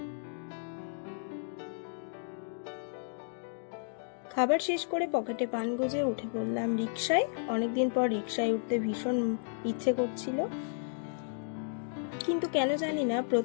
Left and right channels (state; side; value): silent; right; digital silence